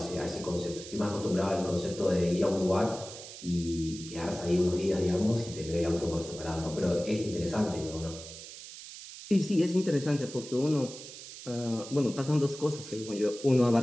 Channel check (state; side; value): noise; right; hiss, 13 dB below the sound